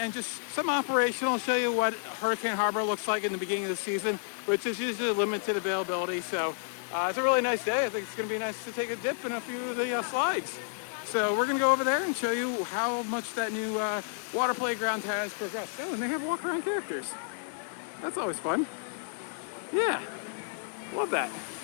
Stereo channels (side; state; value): right; silent; 56 dB below the other